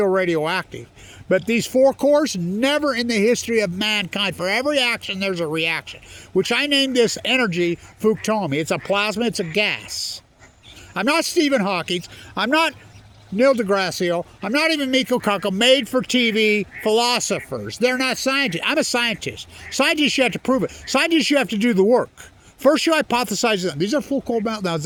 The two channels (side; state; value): both; identical; correlation 1.00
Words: radioactive. But these 4 cores, never in the history of mankind, for every action there's a reaction, which I named this energy Fukushima. It's a plasma, it's a gas. I'm not Stephen Hawking, I'm not Neil deGrasse, I'm not even Miko Kaku, made for TV philosophers. They're not scientists. I'm a scientist. Scientists, you have to prove it. Scientists, you have to do the work. First, you hypothesize them. These are full cold meltdowns.